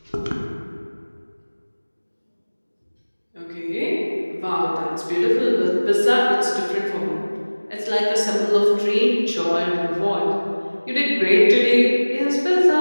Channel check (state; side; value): inverted; both; correlation -1.00